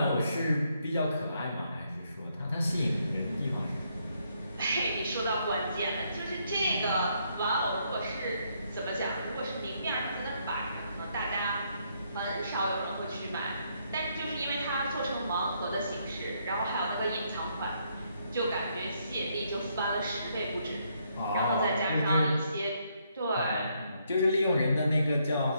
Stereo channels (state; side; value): inverted; both; correlation -0.74